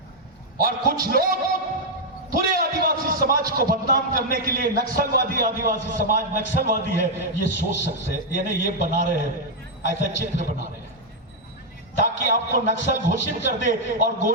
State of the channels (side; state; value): both; normal; correlation -0.02